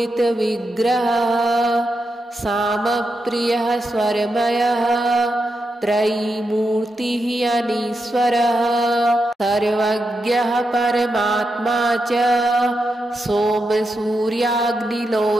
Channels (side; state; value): both; normal; correlation 0.86